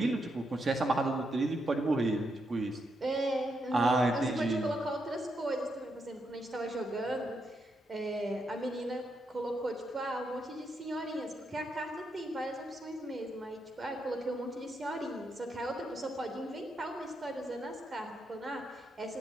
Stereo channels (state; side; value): normal; both; correlation 0.81